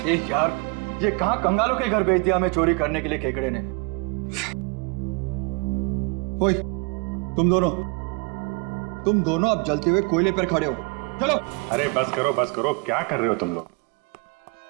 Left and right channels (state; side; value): quieter; left; 29.9 dB